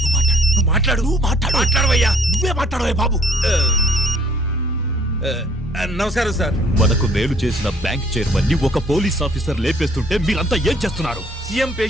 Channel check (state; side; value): normal; both; correlation 0.58